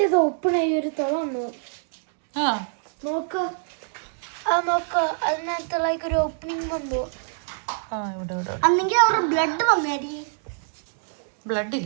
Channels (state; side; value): silent; left; digital silence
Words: ഓപ്പൺ ആയി ഒരു തുറന്നു ആ നോക്ക് അതിനകത്ത് ലൈക്ക് ഒരു ഓപ്പണിംഗ് വന്നു ആ ഇവിടെ ഇവിടെ അന്നെങ്കിൽ അവരുടെ ബ്ലഡ് വന്നായിരിക്കും ബ്ലഡ്